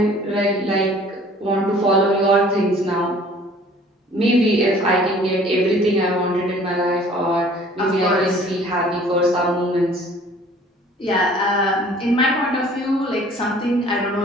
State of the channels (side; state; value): both; normal; correlation 0.52